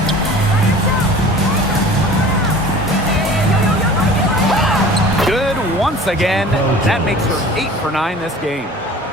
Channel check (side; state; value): both; normal; correlation 0.43